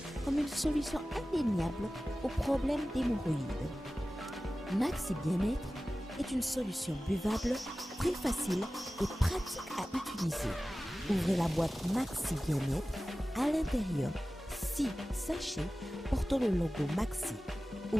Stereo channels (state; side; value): normal; both; correlation 0.96